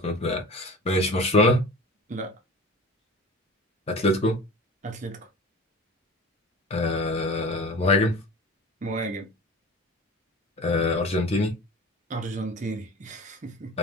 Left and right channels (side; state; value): both; normal; correlation 0.36